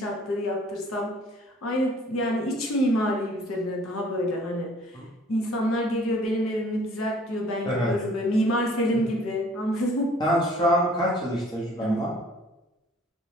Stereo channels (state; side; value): normal; both; correlation 0.55